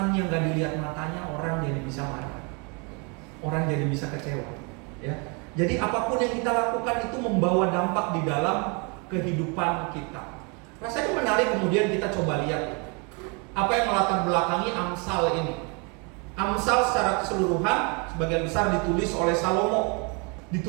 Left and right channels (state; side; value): quieter; left; 32.8 dB